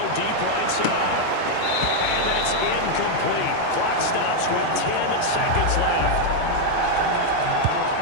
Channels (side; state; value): both; different; correlation 0.00